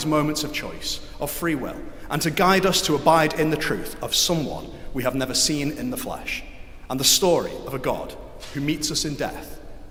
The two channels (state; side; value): identical; both; correlation 1.00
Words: moments of choice, of free will, and to guide us to abide in the truth of someone we have never seen in the flesh, and the story of a God who meets us in death